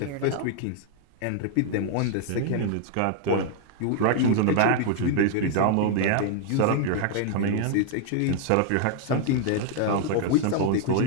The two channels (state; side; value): different; both; correlation 0.00